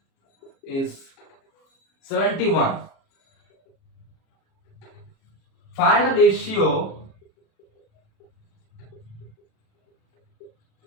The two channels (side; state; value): right; late; 37 ms